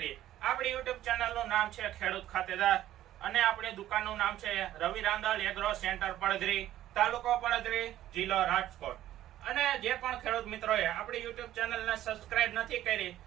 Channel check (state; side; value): quieter; left; 13.2 dB